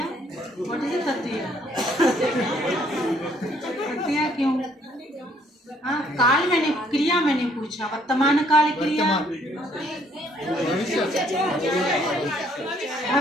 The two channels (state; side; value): normal; both; correlation 0.65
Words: व्हाट इज ततिया? ततिया क्यों? हाँ, काल मैंने, क्रिया मैंने पूछा, वर्तमान काल क्रिया,